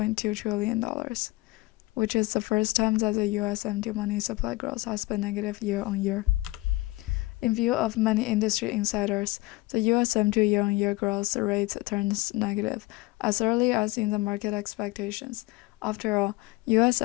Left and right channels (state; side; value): quieter; right; 20.9 dB